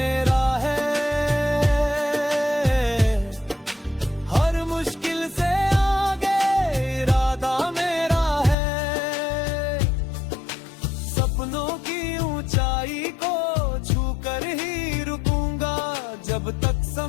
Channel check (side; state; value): right; drops out; at 8.6 s